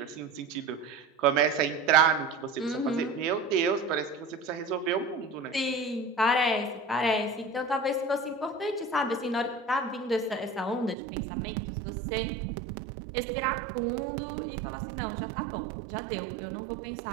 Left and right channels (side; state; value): left; drops out; at 11.0 s